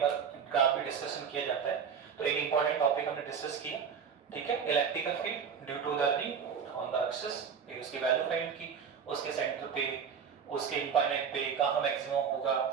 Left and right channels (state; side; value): quieter; left; 6.8 dB